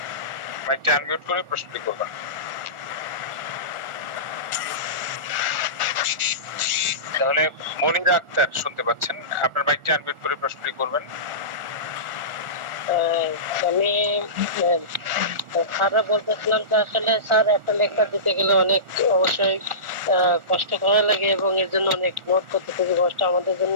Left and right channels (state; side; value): late; left; 1.4 ms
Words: মাইকটা আনমিউট করে প্রশ্নটি করবেন। তাহলে মনিরা আক্তার শুনতে পাচ্ছেন, আপনার মাইকটা আনমিউট করে প্রশ্নটি করবেন। আমি স্যাররা বলতেছিলাম যে আসলে স্যার একটা লেকচার দিতে গেলে অনেক অবশ্যই কষ্ট করা লাগে, এবং এর জন্য অনেক নোট করতে খুবই কষ্ট। আমাদের জন্য